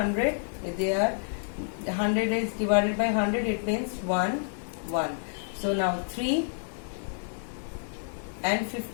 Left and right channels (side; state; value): right; silent; 58 dB below the other